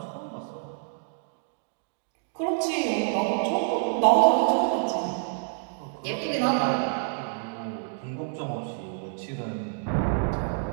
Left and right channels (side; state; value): left; silent; digital silence